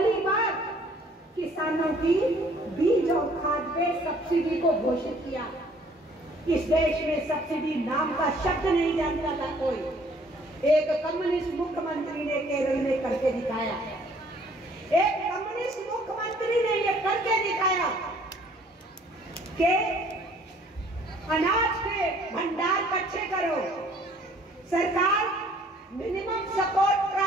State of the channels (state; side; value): normal; both; correlation 0.58